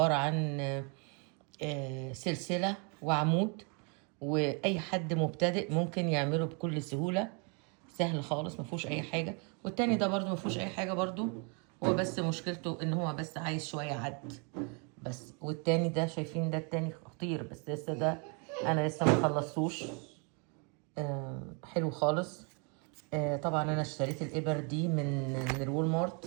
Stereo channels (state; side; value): quieter; left; 35.8 dB